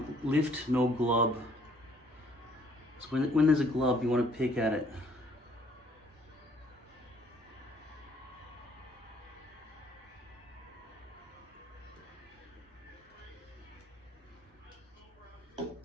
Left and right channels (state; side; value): normal; both; correlation 0.62